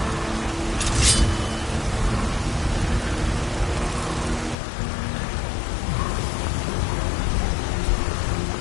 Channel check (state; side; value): drops out; right; at 4.5 s